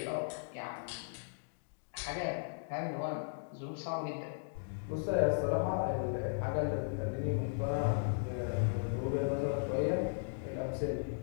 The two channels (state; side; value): silent; right; digital silence